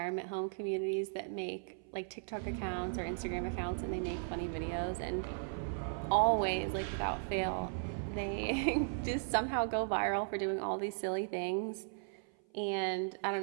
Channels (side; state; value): left; silent; 53 dB below the other